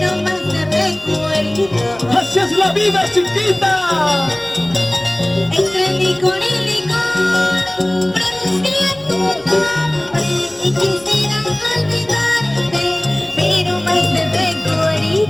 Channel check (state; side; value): noise; right; hum, 26 dB below the sound